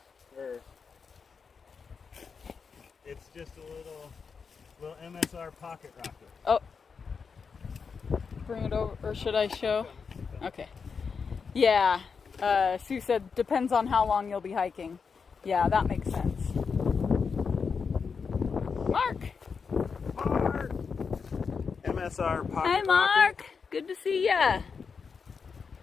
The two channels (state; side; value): quieter; right; 5.6 dB